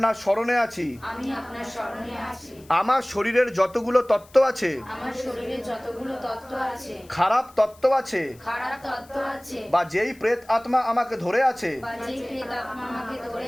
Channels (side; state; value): left; noise; hiss, 26 dB below the sound